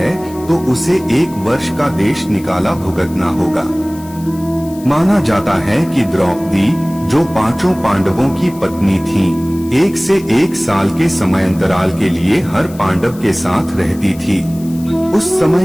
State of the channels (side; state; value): left; noise; hiss, 21 dB below the sound